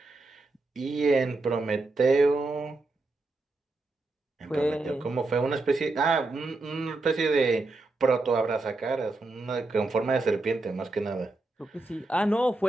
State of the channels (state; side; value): quieter; left; 3.2 dB